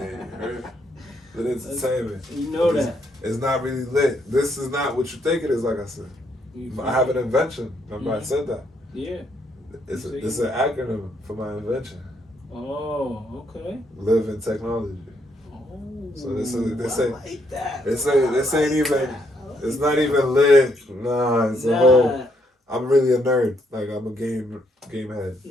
Lit Entertainment. You know that. It's not really lit. This is not what you think it is. Like I said, I have an invention. Remember I said that. Yeah. It's an acronym for my invention. Oh, okay. Live in technology. Oh, so this like that. This ain't even. It's not even lit. Nah, it's a whole. I'm really a nerd. Like I'm a game head.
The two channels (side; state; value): both; normal; correlation 0.73